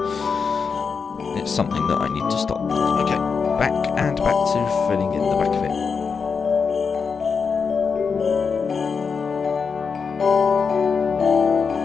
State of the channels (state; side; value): quieter; right; 5.6 dB